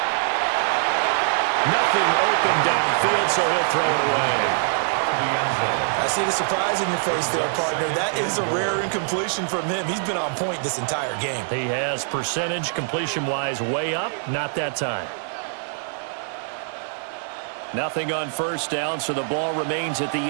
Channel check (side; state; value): left; silent; digital silence